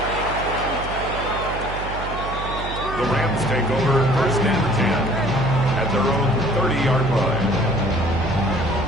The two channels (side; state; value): right; noise; hum, 8 dB below the sound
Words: The Rams take over first and 10 at their own 30-yard line.